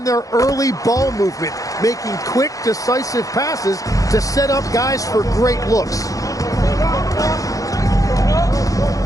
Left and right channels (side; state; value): right; late; 0.17 ms